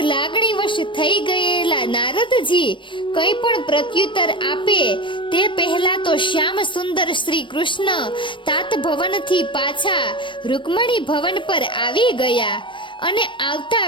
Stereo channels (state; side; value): late; right; 0.24 ms